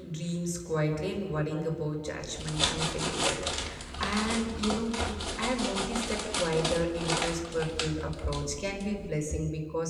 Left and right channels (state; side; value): identical; both; correlation 1.00